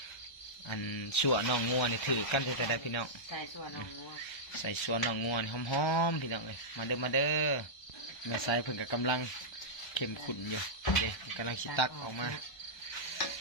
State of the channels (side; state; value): right; late; 1.3 ms